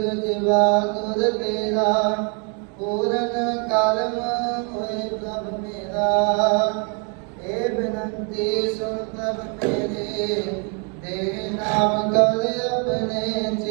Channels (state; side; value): quieter; left; 36.5 dB